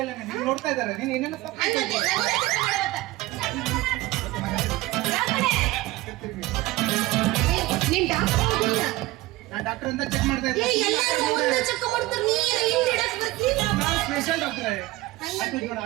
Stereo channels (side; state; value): left; quieter; 18.8 dB